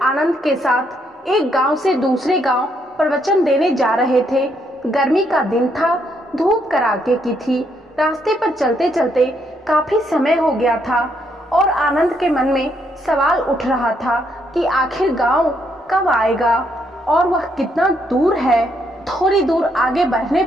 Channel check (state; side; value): normal; both; correlation 0.74